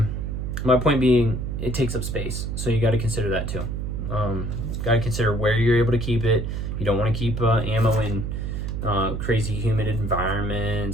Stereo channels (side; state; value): right; noise; hum, 3 dB below the sound